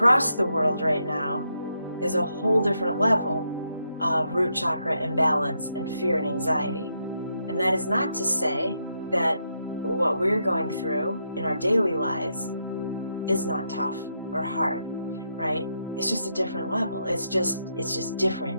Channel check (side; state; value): both; inverted; correlation -0.80